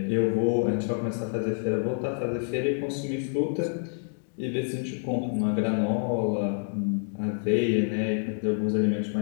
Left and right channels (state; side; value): silent; right; digital silence